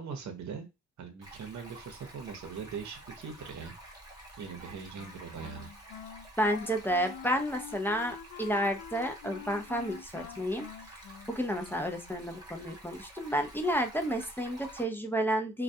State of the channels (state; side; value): normal; both; correlation 0.59